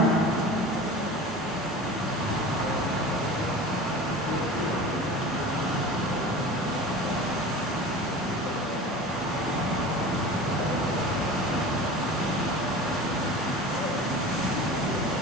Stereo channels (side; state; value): both; normal; correlation 0.36